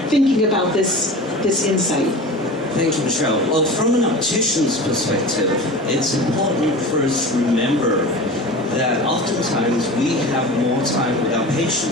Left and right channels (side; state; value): both; normal; correlation 0.33